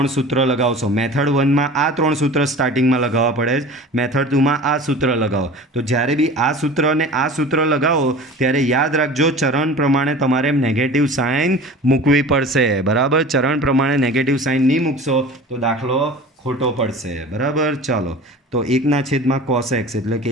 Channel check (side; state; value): both; normal; correlation 0.39